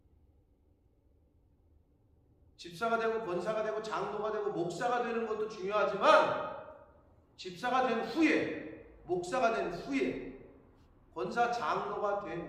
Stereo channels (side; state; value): both; identical; correlation 1.00